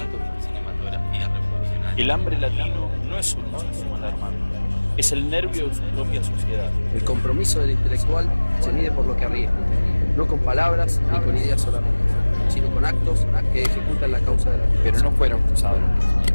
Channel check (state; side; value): inverted; both; correlation -1.00